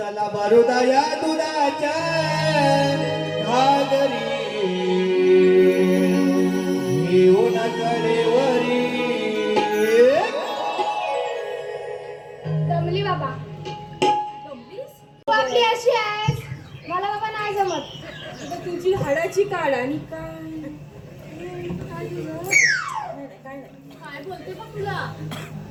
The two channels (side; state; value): both; identical; correlation 1.00